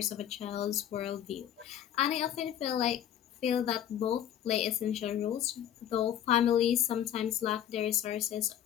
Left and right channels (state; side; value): quieter; right; 10.6 dB